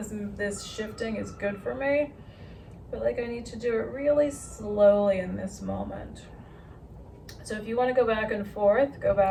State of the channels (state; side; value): identical; both; correlation 1.00